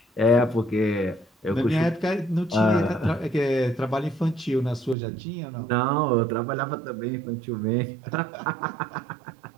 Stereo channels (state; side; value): drops out; left; at 5.0 s